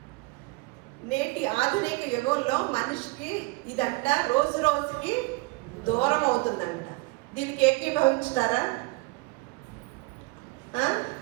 నేటి ఆధునిక యుగంలో మనిషికి ఇదంట రోజుకి దూరం అవుతుందంట. దీనికి ఏకీభవించుతారా?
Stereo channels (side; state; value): left; quieter; 24.1 dB